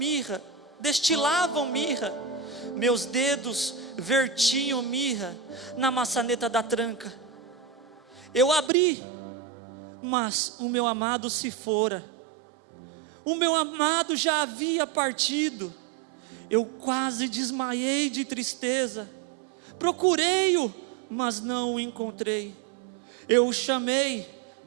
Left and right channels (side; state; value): left; drops out; at 8.7 s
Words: meus dedos vertiam mirra na maçaneta da tranca. Eu abri, mas o meu amado se fora. O meu amado já havia partido. Eu quase desmaiei de tristeza. Procurei-o, mas não o encontrei. Eu o chamei,